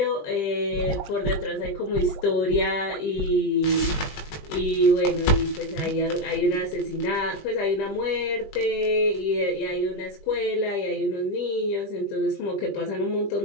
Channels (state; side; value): late; right; 20 ms